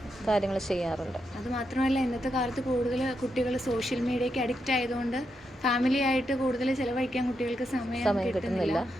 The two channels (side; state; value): both; normal; correlation 0.83